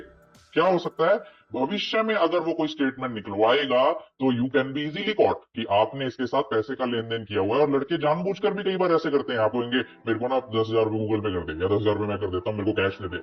क्या हो सकता है भविष्य में अगर वो कोई स्टेटमेंट निकलवाएगा तो you can be easily caught कि आपने इसके साथ पैसे का लेन देन किया हुआ है। और लड़के जानबूझकर भी कई बार ऐसे करते हैं, आप कहेंगे मेरे को ना 10,000 रुपए गूगल पे कर दे, या 10,000 रुपए मैं कर देता हूं, मेरे को कैश दे दे,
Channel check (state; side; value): identical; both; correlation 1.00